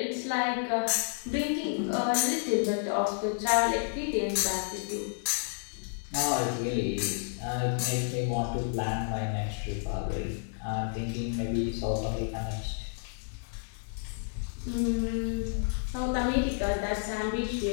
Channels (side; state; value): right; silent; digital silence